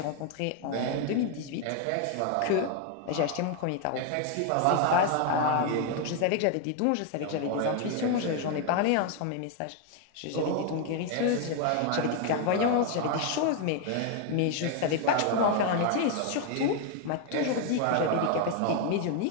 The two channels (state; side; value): different; both; correlation 0.01